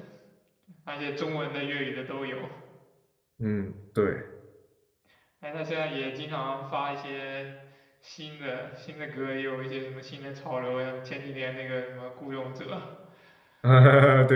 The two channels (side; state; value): both; identical; correlation 1.00